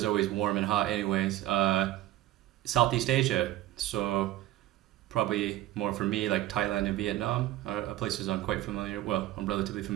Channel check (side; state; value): left; quieter; 14.7 dB